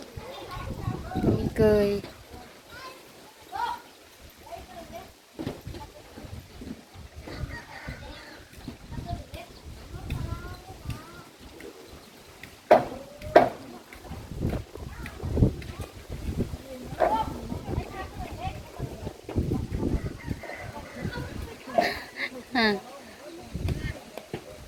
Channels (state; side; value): identical; both; correlation 1.00